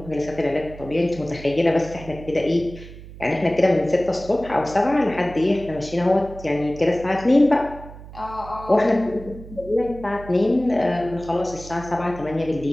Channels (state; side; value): noise; right; hum, 16 dB below the sound